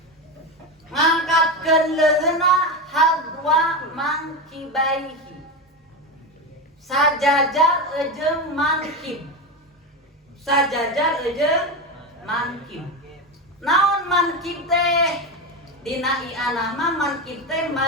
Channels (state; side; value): normal; both; correlation 0.17